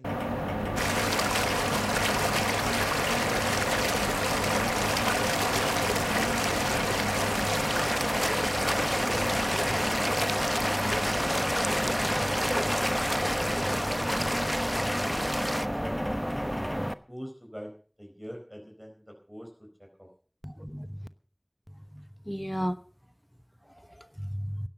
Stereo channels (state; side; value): identical; both; correlation 1.00